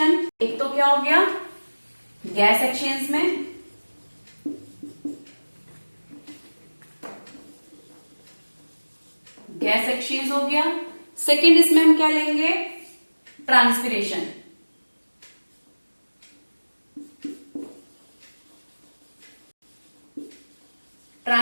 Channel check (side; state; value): both; inverted; correlation -1.00